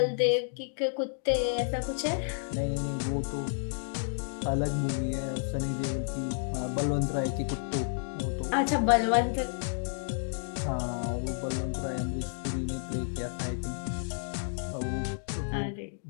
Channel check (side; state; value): right; silent; digital silence